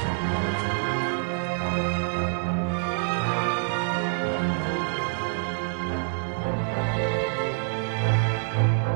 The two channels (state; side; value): silent; left; digital silence